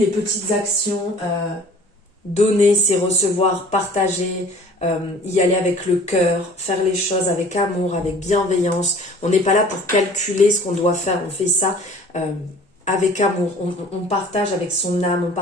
petites actions, donner, c'est recevoir, partager, y aller avec le cœur, faire les choses avec amour, avec bienveillance. On n'est pas là pour calculer ce qu'on doit faire, on fait ça avec amour. On partage avec son âme, on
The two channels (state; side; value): normal; both; correlation 0.49